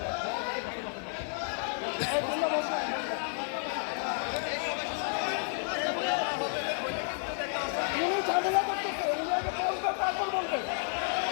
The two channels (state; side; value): silent; right; 57 dB below the other